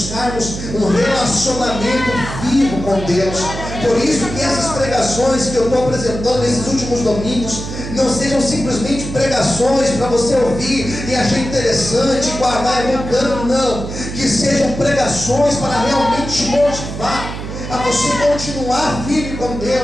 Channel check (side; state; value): right; noise; hum, 8 dB below the sound